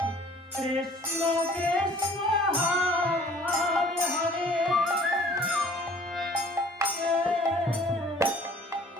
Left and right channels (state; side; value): normal; both; correlation 0.52